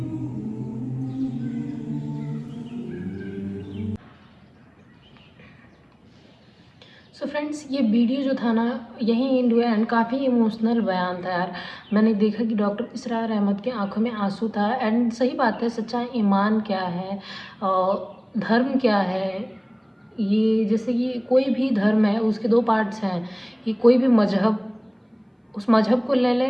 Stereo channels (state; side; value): identical; both; correlation 1.00